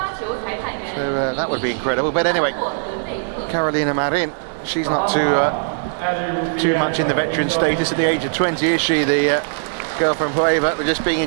that would be incredible. But anyway, Carolina Marin, she's not too much in the veteran status at the age of 20, is she? The girl from Hueva. We're just being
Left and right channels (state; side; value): silent; left; 64 dB below the other